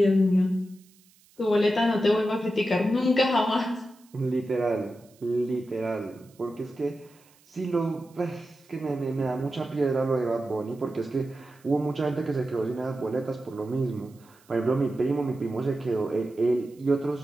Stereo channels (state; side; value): noise; right; hiss, 30 dB below the sound